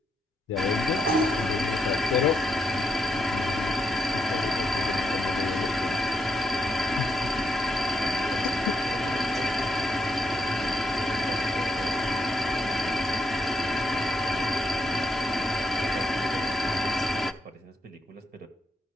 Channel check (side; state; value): both; normal; correlation 0.80